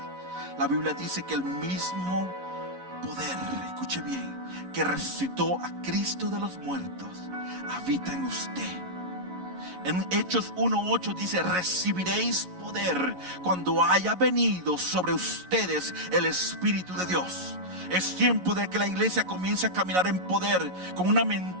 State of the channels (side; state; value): left; late; 11 ms